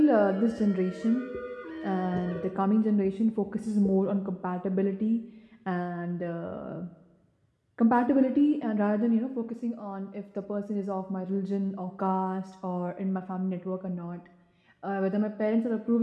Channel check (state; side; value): identical; both; correlation 1.00